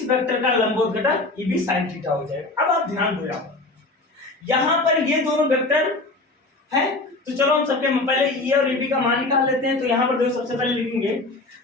वेक्टर का लंबवत घटक ये भी sin थीटा हो जाएगा। अब आप ध्यान दो, यहाँ पर ये दोनों वेक्टर है, तो चलो हम सबके पहले E और AB का मान निकाल लेते हैं। तो यहाँ पर देखो सबसे पहले लिखेंगे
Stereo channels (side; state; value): right; quieter; 3.0 dB